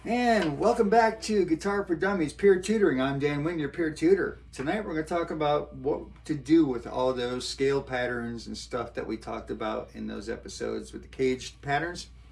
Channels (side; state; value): both; identical; correlation 1.00